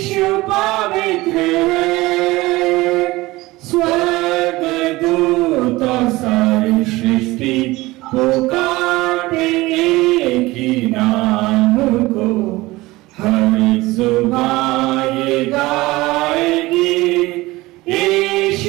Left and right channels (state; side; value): quieter; left; 20.0 dB